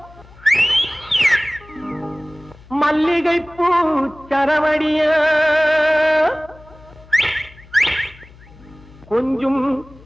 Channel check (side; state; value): left; noise; hum, 23 dB below the sound